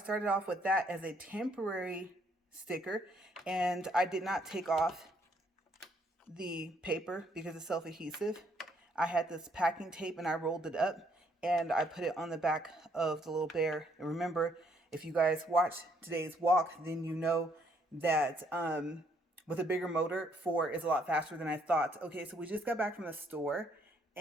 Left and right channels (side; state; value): both; normal; correlation 0.69